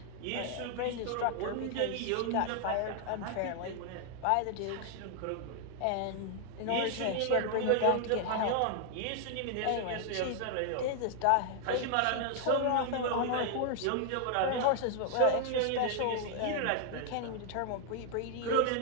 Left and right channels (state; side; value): different; both; correlation 0.00